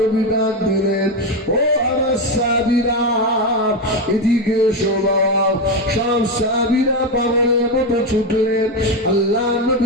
ডাক দিলেন, ও আমার সাহাবীরা এদিকে শোনো। সব সাহাবীরা পাগলের মতো ছুটলেন, আল্লাহ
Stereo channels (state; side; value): normal; both; correlation 0.11